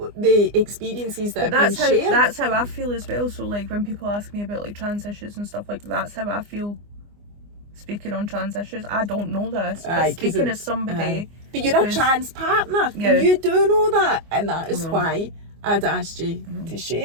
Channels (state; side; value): late; left; 24 ms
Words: the experiences that have been shared. That's how I feel as well. So like when people ask me about like trans issues and stuff like that, that's how I feel speaking on trans issues. I don't know this, but speaking as somebody... But you're a trans partner, and you do know that, and that is why I'd asked you to